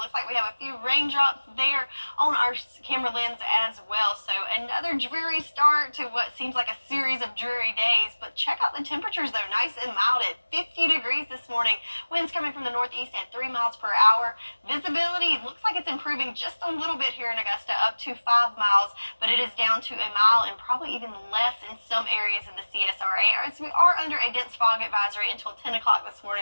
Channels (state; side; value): inverted; both; correlation -1.00